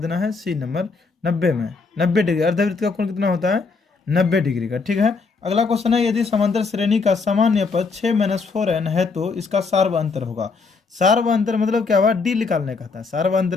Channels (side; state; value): right; quieter; 4.5 dB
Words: है, सी नंबर 90 में 90 डिग्री, अर्धवृत्त का कोण कितना होता है 90 डिग्री का। ठीक है, अगला क्वेश्चन है, यदि समांतर श्रेणी का सामान्य पद 6-4n है तो इसका सार्वअंतर होगा। सार्वअंतर मतलब क्या हुआ, डी निकालने का था,